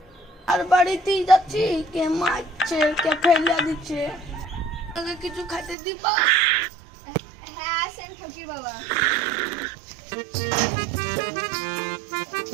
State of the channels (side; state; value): left; drops out; at 5.8 s